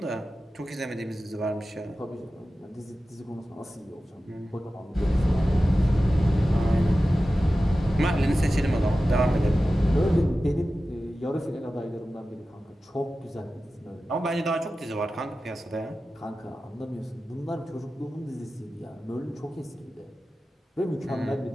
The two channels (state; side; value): normal; both; correlation 0.94